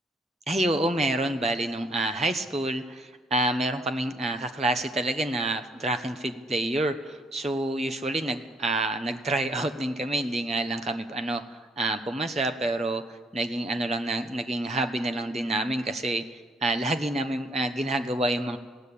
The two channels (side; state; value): both; normal; correlation 0.67